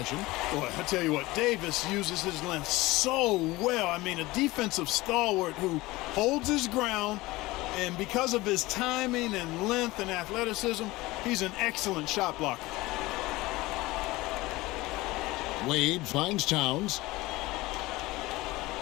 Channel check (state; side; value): quieter; right; 20.1 dB